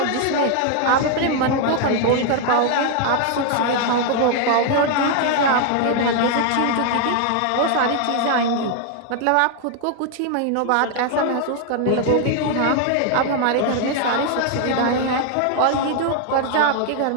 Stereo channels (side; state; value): both; different; correlation 0.00